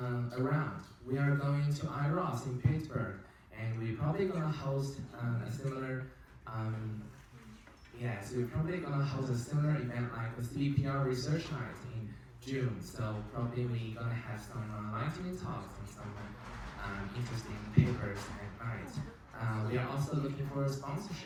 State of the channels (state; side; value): identical; both; correlation 1.00